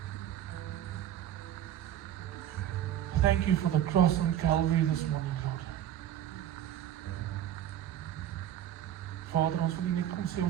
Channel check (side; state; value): left; quieter; 11.3 dB